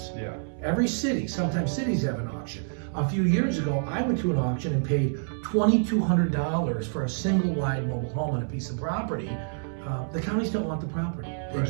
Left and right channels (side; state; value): left; silent; 60 dB below the other